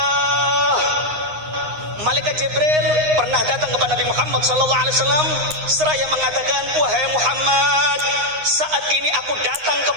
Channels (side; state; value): left; late; 9.7 ms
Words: Malaikat Jibril pernah datang kepada Nabi Muhammad sallallahu alaihi wasallam seraya mengatakan, "Wahai Muhammad, saat ini aku datang